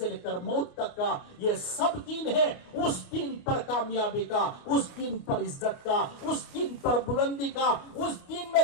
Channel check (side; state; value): right; late; 29 ms